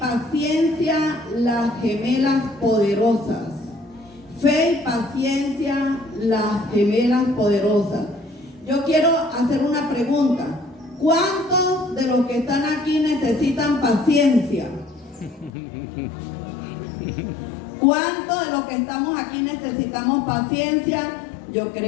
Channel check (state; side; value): drops out; right; at 15.5 s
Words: las gemelas poderosas. Fe y paciencia, las gemelas poderosas. Yo quiero hacer una pregunta. ¿Cuántos de los que están aquí necesitan paciencia? ¿Cuántos de los que estamos aquí necesitamos paciencia? Yo